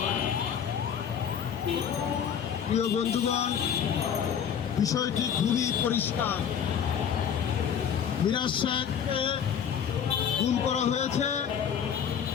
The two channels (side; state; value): right; quieter; 8.1 dB